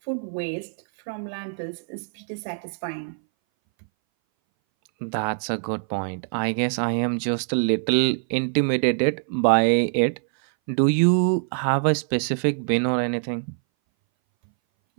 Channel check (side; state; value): left; silent; 60 dB below the other